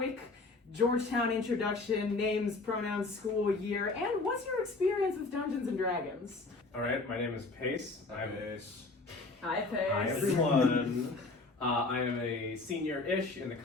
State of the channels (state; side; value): quieter; right; 3.5 dB